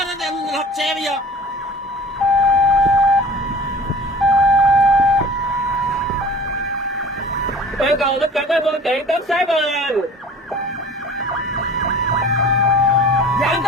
lật xe bây giờ. Yêu cầu tất cả các phương tiện tốc sát lên. Dặn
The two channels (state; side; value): normal; both; correlation 0.43